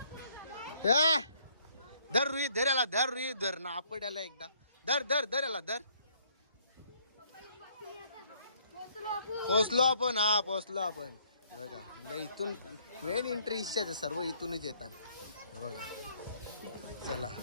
धर रुई धर याला धर रुई धर ना आपण याला एकदा धर धर धर याला धर. पोचलो आपण हा पोचलो आपण. बघा म्हणजे इथून मेन एंट्री इच्छाच सर्व इथूनच येतात. बघा चला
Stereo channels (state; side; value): inverted; both; correlation -0.64